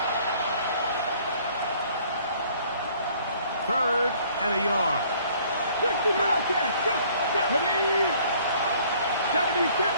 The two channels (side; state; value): both; inverted; correlation -0.58